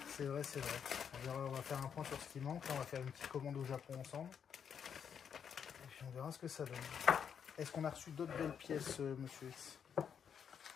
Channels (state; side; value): quieter; right; 7.6 dB